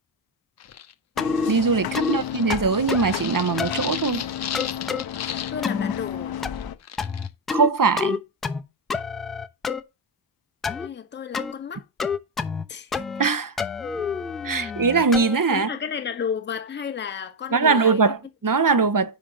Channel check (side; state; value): both; normal; correlation 0.05